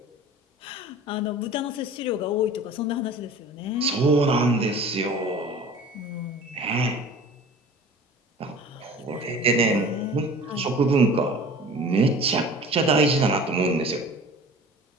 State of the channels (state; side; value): normal; both; correlation 0.42